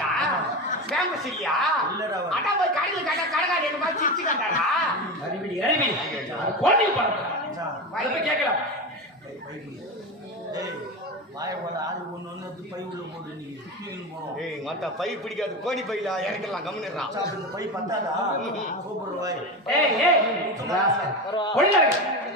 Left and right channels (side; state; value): both; normal; correlation 0.21